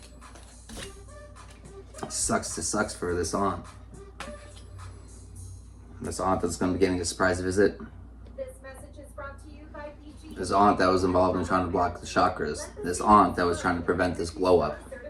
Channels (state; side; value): identical; both; correlation 1.00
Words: Sucks to sucks for this aunt. This aunt that's going to be getting a surprise visit. This aunt that was involved in trying to block the chakras. This aunt that was trying to prevent this glow up.